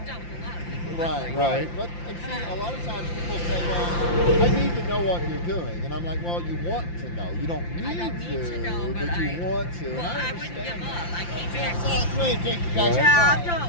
dealt with a lot of people. Right. Right. But and see, a lot of times people say, well, I need to know what you're doing. And I'm like, well, you want to know. You don't need, I don't need to know, but but you want to. Well, And I wouldn't understand give that. up. I came back. Take you guys Job,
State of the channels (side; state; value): right; late; 5.8 ms